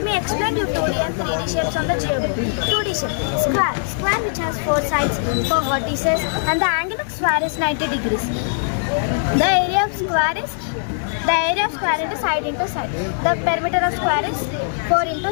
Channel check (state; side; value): silent; right; digital silence